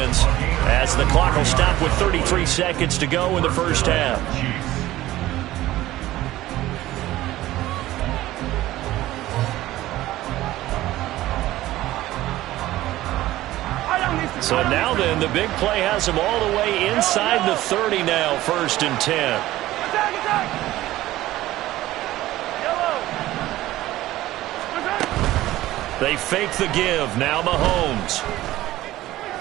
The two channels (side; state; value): left; quieter; 15.8 dB